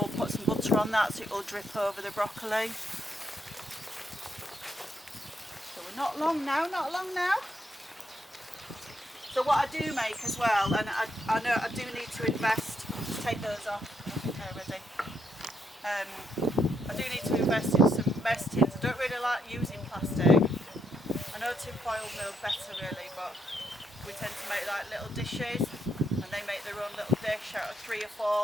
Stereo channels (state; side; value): normal; both; correlation 0.77